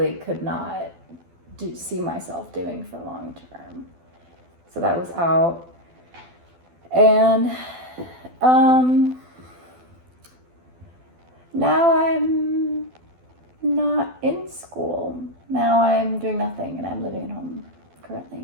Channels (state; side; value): late; left; 12 ms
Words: could not see myself doing for long term. So that was out. And now I'm not in school. Now I'm doing nothing and I'm living at home